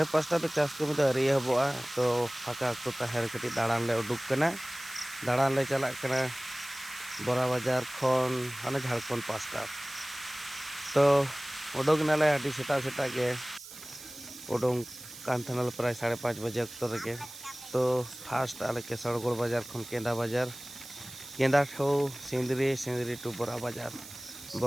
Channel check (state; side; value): noise; right; hiss, 15 dB below the sound